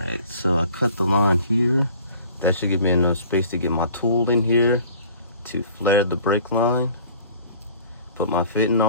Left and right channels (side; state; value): both; inverted; correlation -0.50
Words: so I cut the line here. That should give me enough space to get my tool in here to flare the brake line. Put my fitting